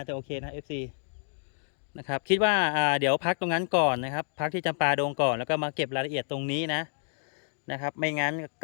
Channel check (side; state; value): right; silent; digital silence